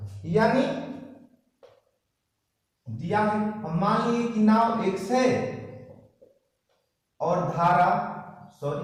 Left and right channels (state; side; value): identical; both; correlation 1.00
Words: यानी दिया है, हम मान लिए कि नाव x है और